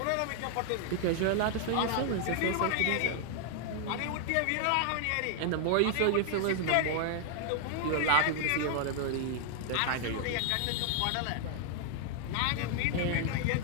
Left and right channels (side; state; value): both; different; correlation 0.00